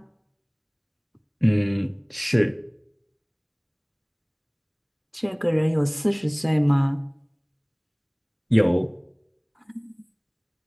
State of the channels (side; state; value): both; identical; correlation 1.00